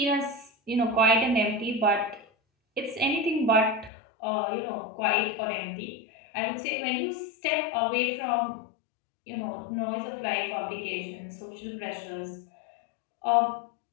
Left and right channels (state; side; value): drops out; right; at 3.9 s